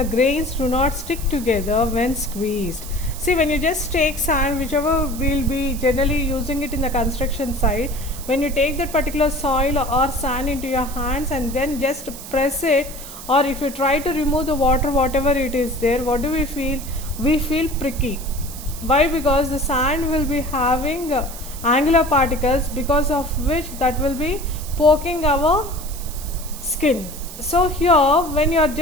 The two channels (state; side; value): noise; right; hiss, 13 dB below the sound